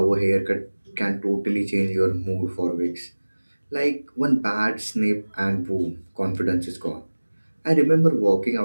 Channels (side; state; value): both; inverted; correlation -1.00